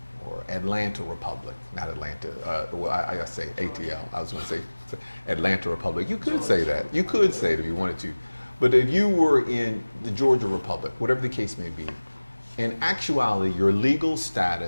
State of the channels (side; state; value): both; inverted; correlation -1.00